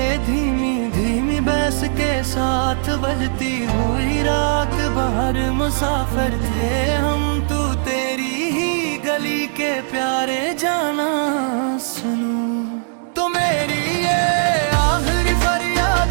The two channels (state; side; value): silent; left; 66 dB below the other